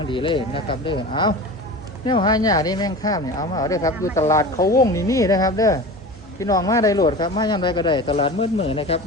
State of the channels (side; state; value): both; normal; correlation 0.33